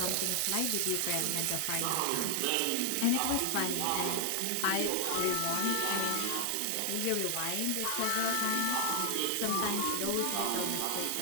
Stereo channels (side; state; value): both; different; correlation 0.00